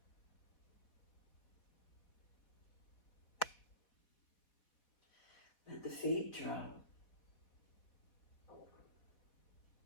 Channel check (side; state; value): right; late; 4.0 ms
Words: Let the feet drop.